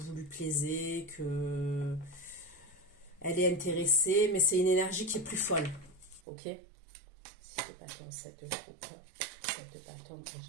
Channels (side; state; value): left; drops out; at 6.2 s